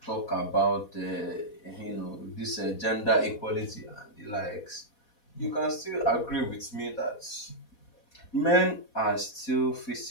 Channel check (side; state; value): right; late; 4.1 ms